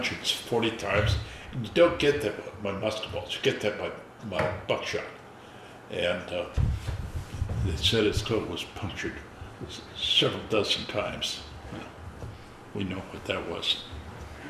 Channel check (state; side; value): identical; both; correlation 1.00